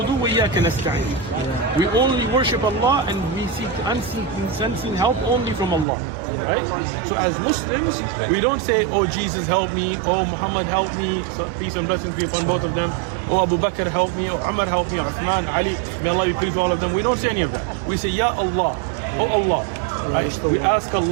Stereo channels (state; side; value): drops out; left; at 5.9 s